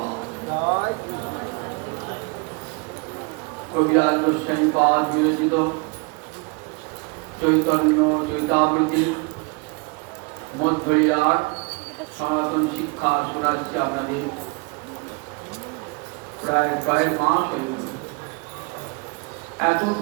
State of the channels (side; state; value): left; quieter; 30.9 dB